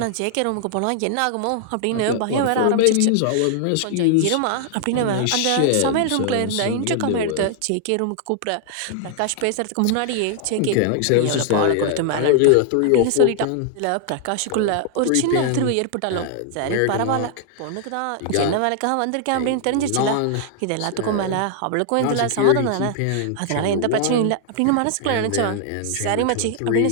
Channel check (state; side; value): different; both; correlation 0.00